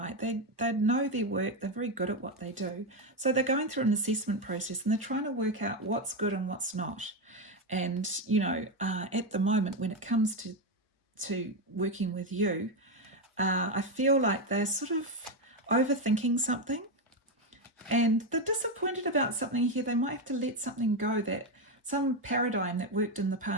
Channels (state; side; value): normal; both; correlation 0.09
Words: They know their work. They're very good at what they do. So they're going through an assessment process, and they're trying to work out what's good and what's not. And at the moment, when it comes to working with you, I feel like they're sort of overthinking something, and they're disappointed about something here. They might have to let something go, that some paradigm that worked in the